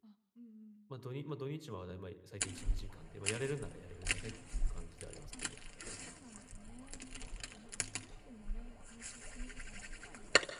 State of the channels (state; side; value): identical; both; correlation 1.00